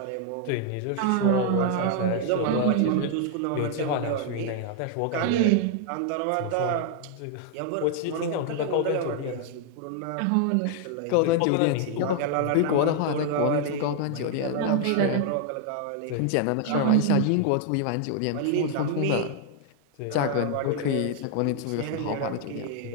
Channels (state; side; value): different; both; correlation 0.00